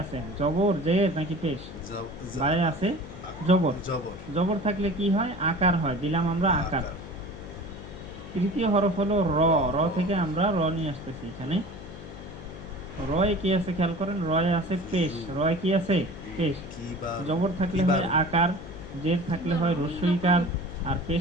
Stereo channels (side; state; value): left; noise; hum, 13 dB below the sound